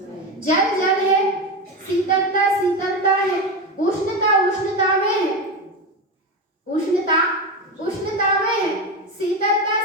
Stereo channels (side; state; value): both; normal; correlation 0.17